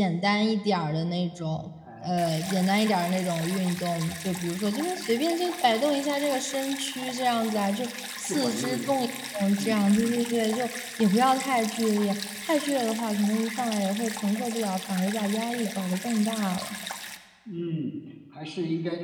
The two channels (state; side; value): identical; both; correlation 1.00